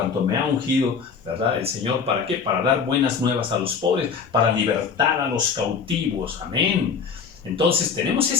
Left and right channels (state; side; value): quieter; right; 6.0 dB